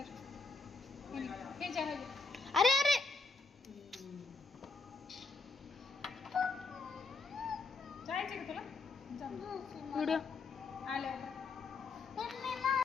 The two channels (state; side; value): quieter; right; 3.9 dB